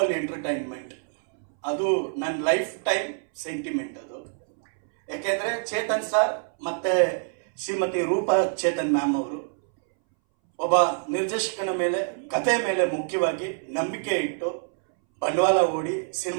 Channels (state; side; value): silent; left; 61 dB below the other